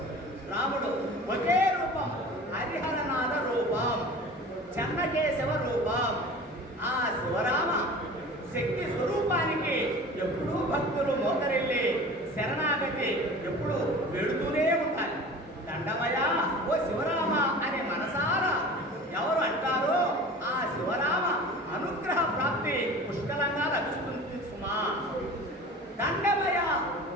రాముడు ఒకే రూపం, హరిహరనాథ రూపం, చెన్నకేశవ రూపం. ఆ శివరామ శక్తి స్వరూపానికి ఎప్పుడూ భక్తులు మోకరిల్లి శరణాగతి ఎప్పుడు వెళుతూనే ఉంటారు. దండమయ ఓ శివరామ అనే మనసారా ఎవరు అంటారో ఆ శివరామ అనుగ్రహ ప్రాప్తి పుష్కలంగా లభిస్తుంది సుమా. దండమయ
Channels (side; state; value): both; normal; correlation 0.39